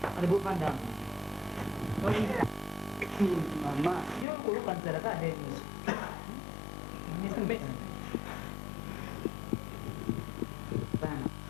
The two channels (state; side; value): drops out; right; at 4.2 s